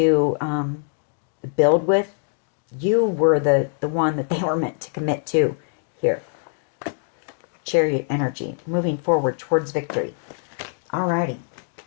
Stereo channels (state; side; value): silent; right; digital silence